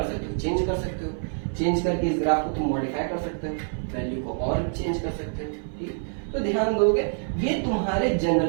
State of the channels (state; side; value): silent; left; 56 dB below the other